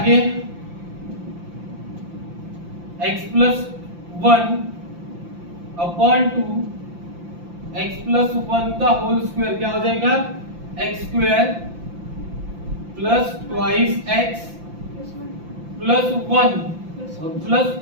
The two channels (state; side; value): late; left; 5.8 ms